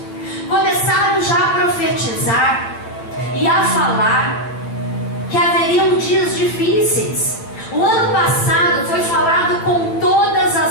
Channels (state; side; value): late; right; 9.0 ms